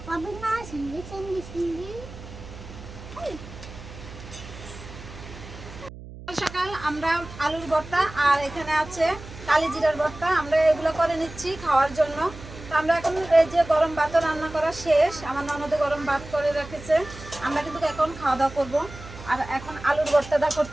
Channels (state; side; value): noise; right; hum, 15 dB below the sound